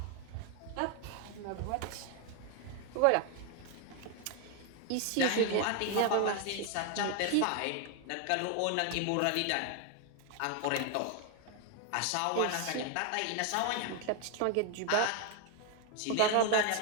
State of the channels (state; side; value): different; both; correlation 0.01